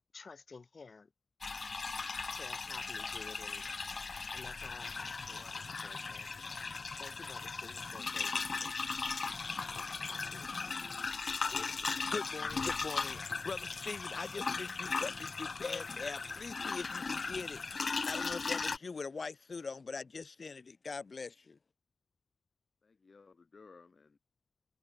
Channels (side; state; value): right; quieter; 4.1 dB